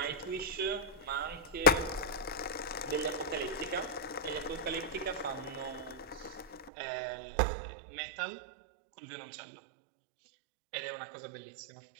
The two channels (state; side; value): drops out; left; at 6.7 s